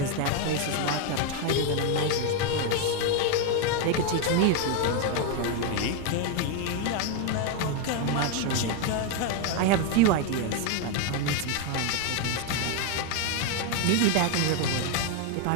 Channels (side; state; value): both; different; correlation 0.01